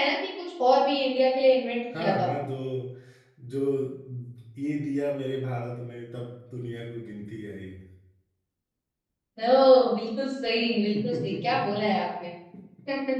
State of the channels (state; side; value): identical; both; correlation 1.00